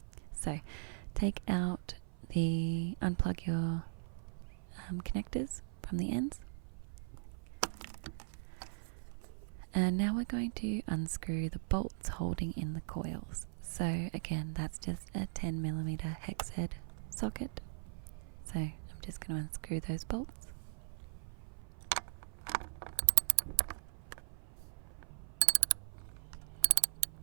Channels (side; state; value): left; silent; 52 dB below the other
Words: So unplug your connectors from the ends. And now we're going to unscrew the bolts holding in the coils. So again, that's just a 10mm hex head socket. So I'm just going to unscrew those bolts.